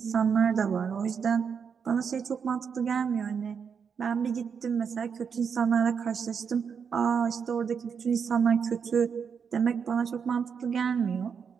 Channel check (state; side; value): quieter; left; 6.5 dB